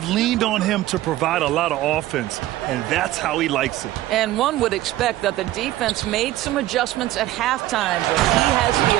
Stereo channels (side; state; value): left; quieter; 15.3 dB